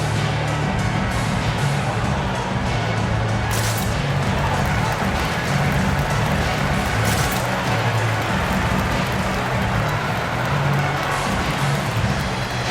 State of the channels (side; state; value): both; identical; correlation 1.00